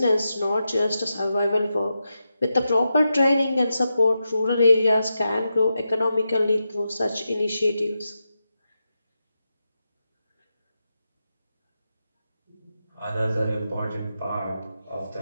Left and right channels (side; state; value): both; inverted; correlation -0.88